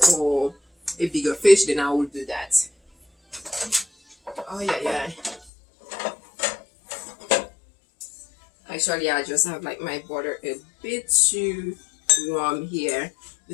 or a bigger fish, then I would do that. Oh yeah. Actually, I just have like my butter a bit too warm here.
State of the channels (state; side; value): drops out; right; at 5.5 s